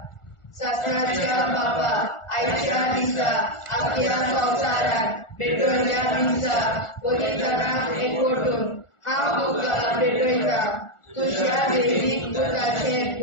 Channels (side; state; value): right; late; 1.4 ms